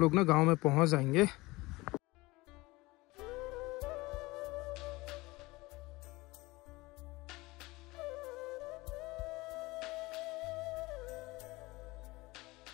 ना गाँव में पहुँच जाएंगे।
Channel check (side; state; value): right; quieter; 21.7 dB